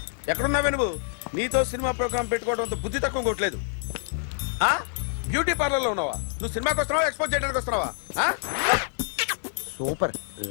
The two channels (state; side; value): silent; right; digital silence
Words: ఎక్కడున్నావే నువ్వు? నీతో సినిమా ప్రోగ్రామ్ పెట్టుకోవడంతో బుద్ధి తక్కువ కొట్టలేదు. బ్యూటీ పార్లర్ లో ఉన్నావా? నువ్వు సినిమాకి వస్తున్నావా, ఎక్స్పోజ్ చేయడానికి వస్తున్నావా? సూపర్.